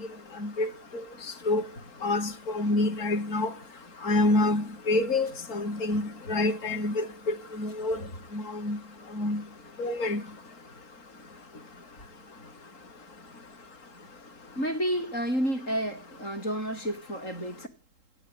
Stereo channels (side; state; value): right; late; 3.7 ms